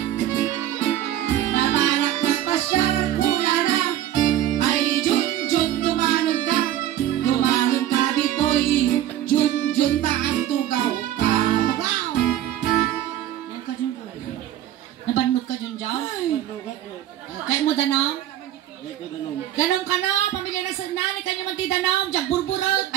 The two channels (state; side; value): quieter; left; 12.2 dB